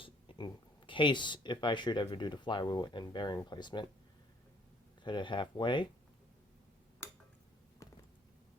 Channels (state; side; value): normal; both; correlation 0.61